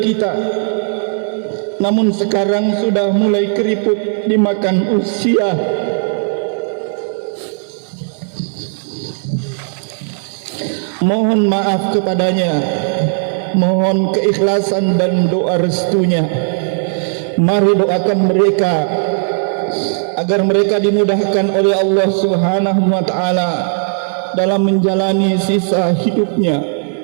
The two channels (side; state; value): left; silent; digital silence